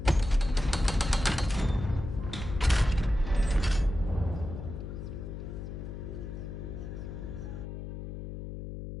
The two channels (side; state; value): left; noise; hum, 8 dB below the sound